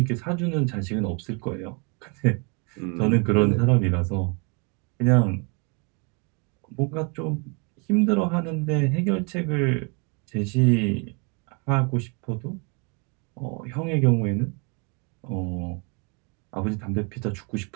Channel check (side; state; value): left; quieter; 33.3 dB